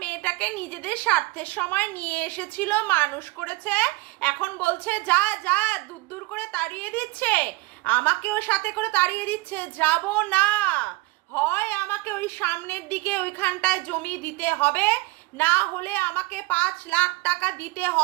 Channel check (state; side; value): quieter; left; 22.7 dB